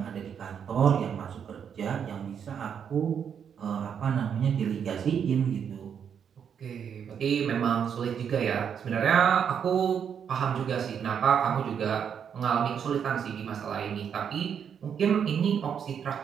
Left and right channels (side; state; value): left; quieter; 7.7 dB